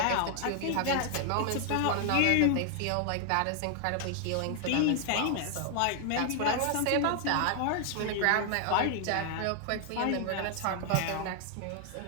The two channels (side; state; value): both; different; correlation 0.00